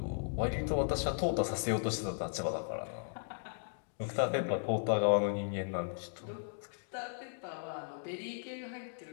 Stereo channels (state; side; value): silent; right; digital silence